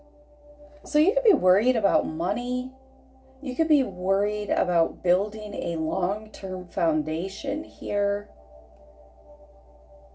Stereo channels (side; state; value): both; identical; correlation 1.00